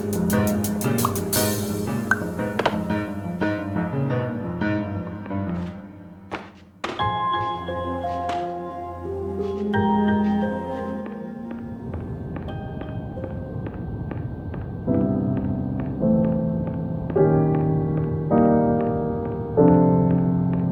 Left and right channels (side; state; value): both; identical; correlation 1.00